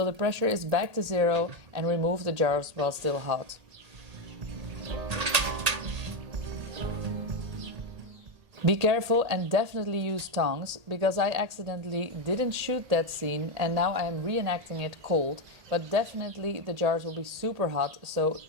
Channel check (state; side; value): late; left; 1.8 ms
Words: the pressure is back to 0 and remove the jars while still hot. Be careful and definitely use tongs, because I accidentally didn't shoot that scene and now I am reenacting it cold, but definitely the jars will be super hot, so